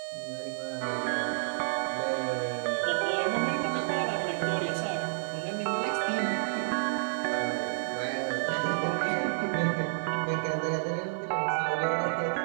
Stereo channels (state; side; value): silent; left; digital silence